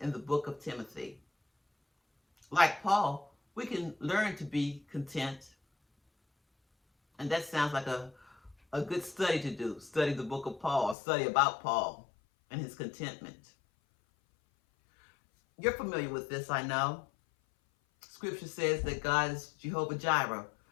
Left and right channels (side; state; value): right; drops out; at 11.0 s